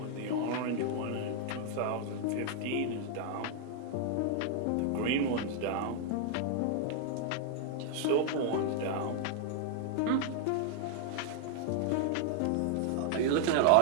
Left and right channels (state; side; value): different; both; correlation 0.00